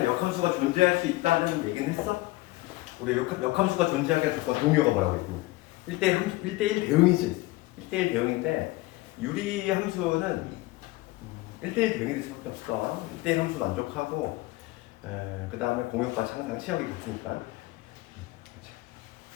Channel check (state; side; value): quieter; right; 19.6 dB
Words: 역함수가 존재할 수 있다는 얘기는 했어? 우리 역함수가 존재하게 조건 동요가 뭐라고 했냐면 1대1 대응이지. 1대1 대응인데 유리함수는 1대1 대응이 될 수밖에 없어. 1대1 함수 만족하고 그 다음에 공역과 창상 치역이 같으니까